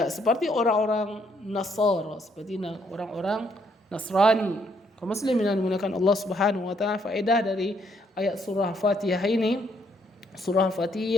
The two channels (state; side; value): normal; both; correlation 0.71